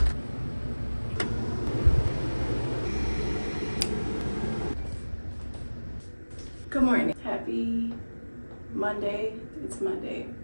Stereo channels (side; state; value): both; inverted; correlation -1.00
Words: Good morning. Happy Monday. It's Monday.